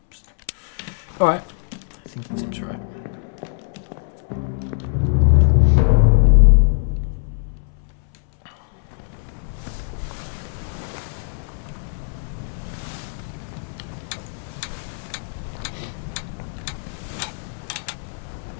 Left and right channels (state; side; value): silent; right; 63 dB below the other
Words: Alright. I think that seems right.